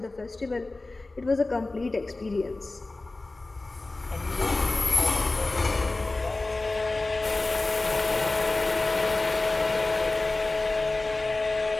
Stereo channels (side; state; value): right; quieter; 3.2 dB